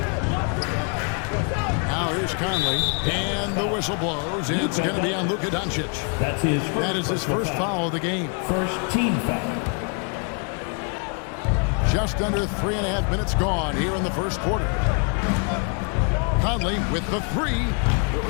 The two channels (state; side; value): quieter; right; 39.5 dB